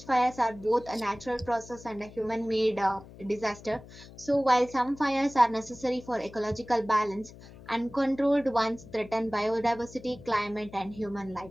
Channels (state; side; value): noise; left; hum, 18 dB below the sound